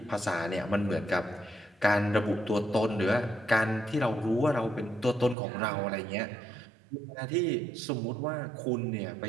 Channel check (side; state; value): left; drops out; at 5.4 s